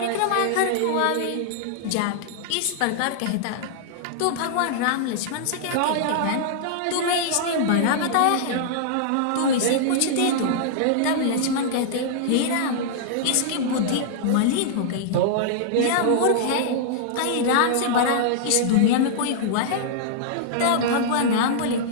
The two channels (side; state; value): both; different; correlation -0.01